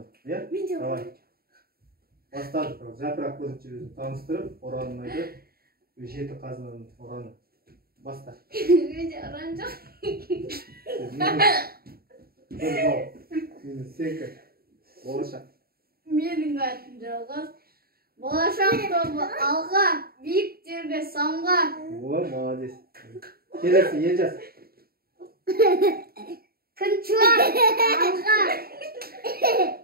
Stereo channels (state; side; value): late; left; 0.44 ms